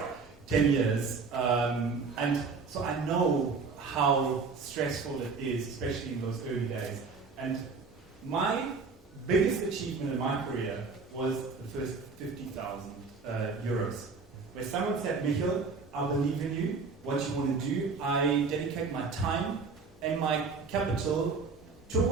10 years, and so I know how stressful it is, especially in those early days. And my biggest achievement in my career was the first 50,000 euros, where someone said, Michel, I believe in you, what you want to do. I dedicate my time and my capital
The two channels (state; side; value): quieter; left; 4.7 dB